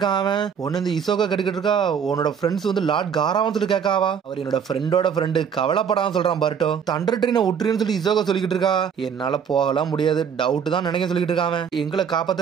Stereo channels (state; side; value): quieter; left; 7.4 dB